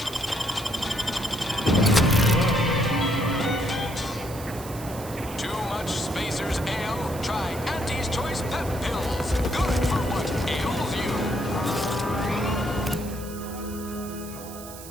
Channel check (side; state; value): right; noise; hiss, 14 dB below the sound